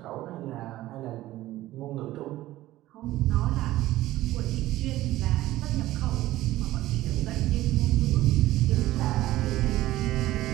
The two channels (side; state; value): left; quieter; 15.9 dB